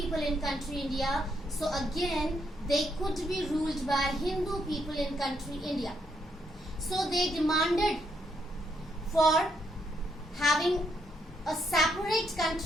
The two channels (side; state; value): both; normal; correlation 0.76